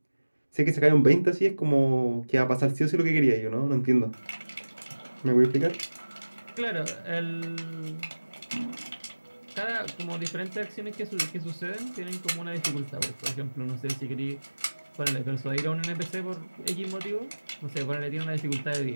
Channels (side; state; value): both; inverted; correlation -1.00